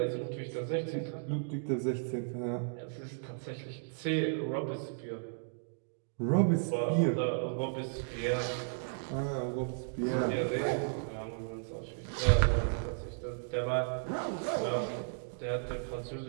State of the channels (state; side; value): silent; left; digital silence